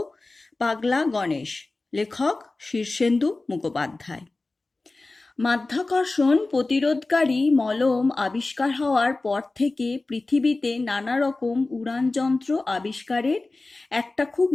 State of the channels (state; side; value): quieter; right; 3.3 dB